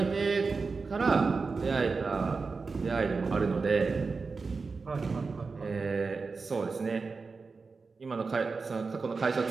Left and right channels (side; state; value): left; quieter; 4.4 dB